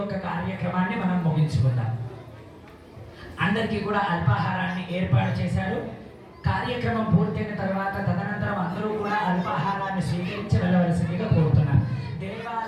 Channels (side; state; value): both; identical; correlation 1.00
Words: కార్యక్రమాన్ని మనం ముగించుకుందాం. అందరికీ కూడా అల్పాహారాన్ని ఏర్పాటు చేశారు. కార్యక్రమం పూర్తయిన తర్వాత తదనంతరం అందరూ కూడా అల్పాహారాన్ని స్వీకరించి వెళ్ళవలసిందిగా కోరుతున్నారు.